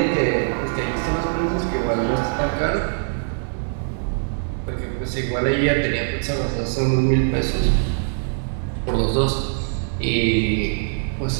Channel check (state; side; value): silent; left; 64 dB below the other